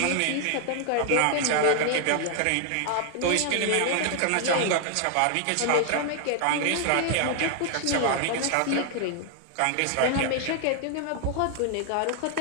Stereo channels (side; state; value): both; different; correlation 0.00